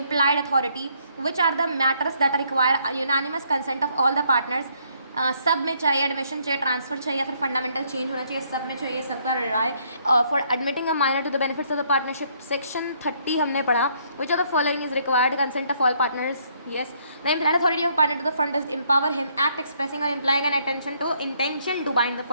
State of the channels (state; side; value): inverted; both; correlation -0.68